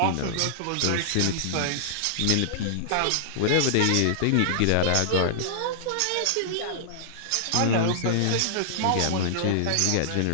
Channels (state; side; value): different; both; correlation -0.01